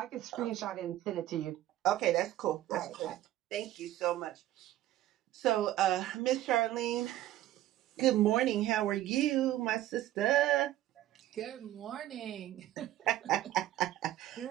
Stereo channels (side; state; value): left; quieter; 13.9 dB